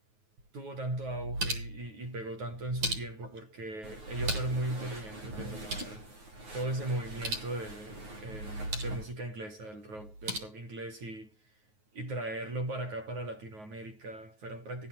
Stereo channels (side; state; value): left; late; 9.4 ms